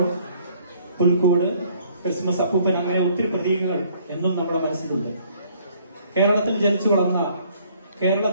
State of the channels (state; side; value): inverted; both; correlation -0.61